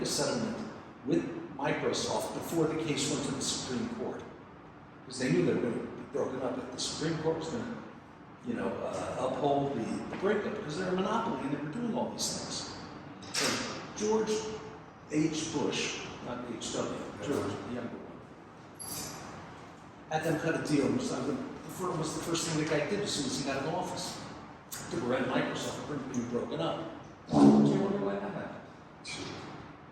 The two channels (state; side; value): identical; both; correlation 1.00